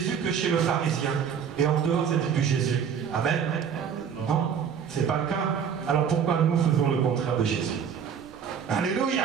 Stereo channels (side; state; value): left; quieter; 7.5 dB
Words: que chez le pharisien, et en dehors c'était plus Jésus. Amen. Non, c'est pas le cas. Alors pourquoi nous faisons le contraire de Jésus? Alléluia.